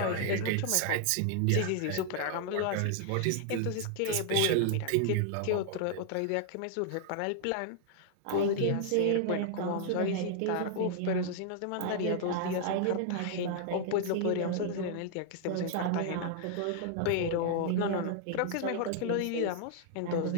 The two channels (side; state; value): both; different; correlation 0.00